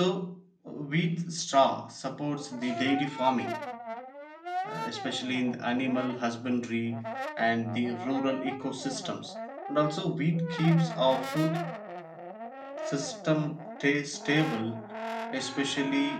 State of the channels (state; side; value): identical; both; correlation 1.00